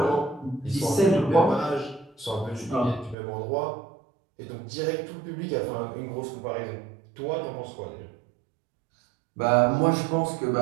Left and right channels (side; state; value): left; drops out; at 3.2 s